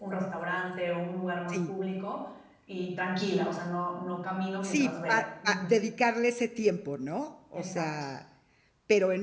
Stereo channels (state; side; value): identical; both; correlation 1.00